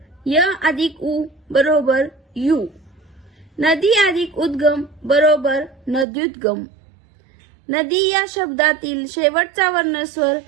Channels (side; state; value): left; drops out; at 6.1 s